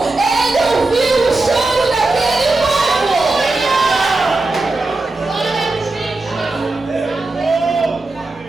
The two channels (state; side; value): quieter; left; 3.2 dB